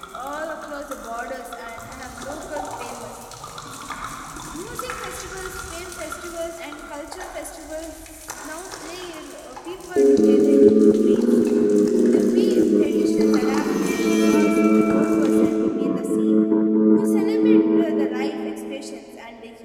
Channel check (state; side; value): identical; both; correlation 1.00